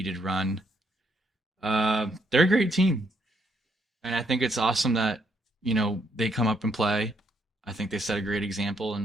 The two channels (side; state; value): both; normal; correlation 0.73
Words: run. They're a great team, and I think it's awesome that they come up and play. I think they set a great example